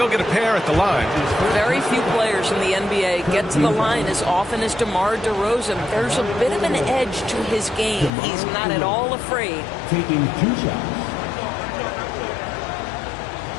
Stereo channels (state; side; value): drops out; right; at 8.1 s